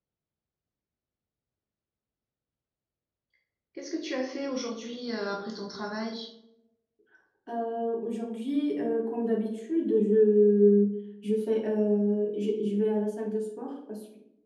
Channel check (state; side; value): identical; both; correlation 1.00